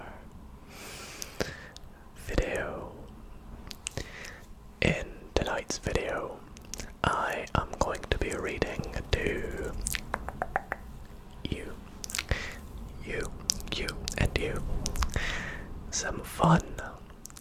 video. In tonight's video, I am going to be reading to you, and you some fun,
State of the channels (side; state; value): both; identical; correlation 1.00